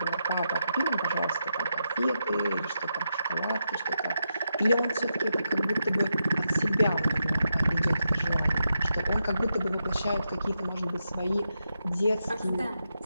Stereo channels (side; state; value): both; inverted; correlation -0.85